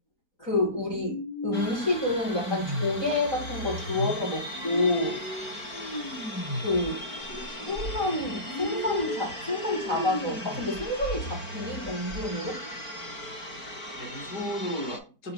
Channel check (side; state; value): right; late; 4.4 ms